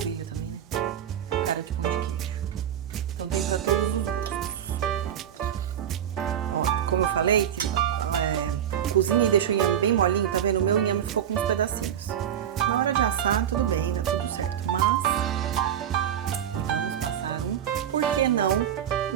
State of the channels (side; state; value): left; quieter; 9.8 dB